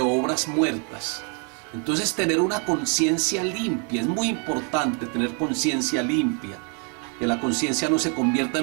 muertas. Entonces tener una conciencia limpia, es muy importante tener conciencia limpia. Que la conciencia no se convierta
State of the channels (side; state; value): left; quieter; 38.5 dB